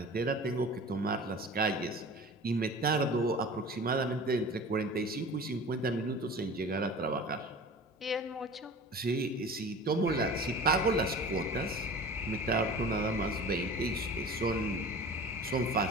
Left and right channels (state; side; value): normal; both; correlation 0.39